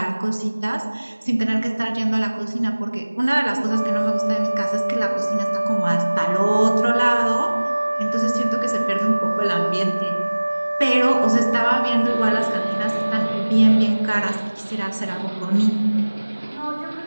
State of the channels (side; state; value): both; inverted; correlation -1.00